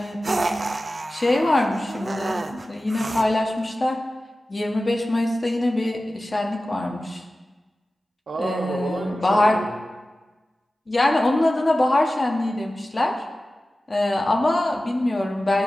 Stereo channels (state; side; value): normal; both; correlation 0.95